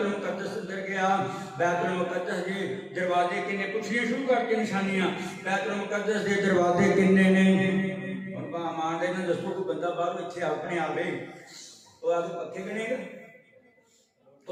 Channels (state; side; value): identical; both; correlation 1.00